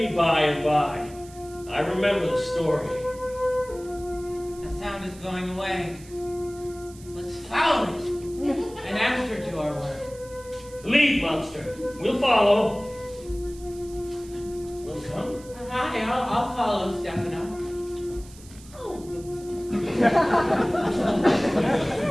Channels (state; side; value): noise; right; hiss, 21 dB below the sound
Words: by and by. I remember the story. The sound is going away. Let's follow it and answer to our word. Lead, monster. We'll follow. We'll come. Hi, I'll follow Stefano. Oh.